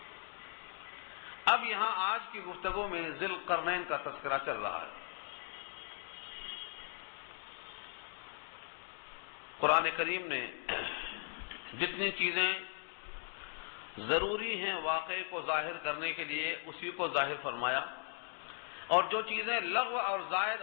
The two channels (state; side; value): silent; right; 52 dB below the other